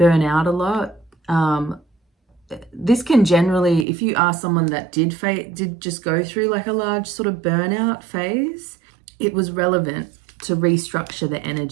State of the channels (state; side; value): drops out; left; at 3.9 s